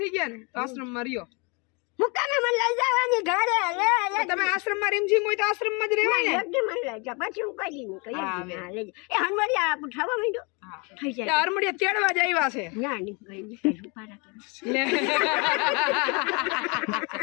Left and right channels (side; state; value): right; quieter; 31.1 dB